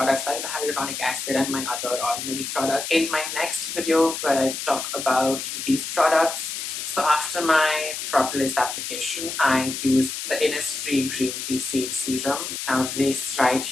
like the hyaluronic acid and my other ordinary products in my next video where I talk about these products. So after my Propolis application, I used the Innisfree green tea seed serum. Now this right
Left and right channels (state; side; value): noise; left; hiss, 5 dB below the sound